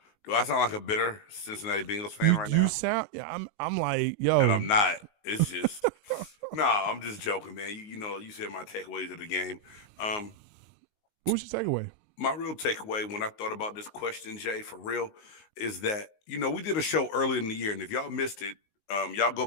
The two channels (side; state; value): right; late; 19 ms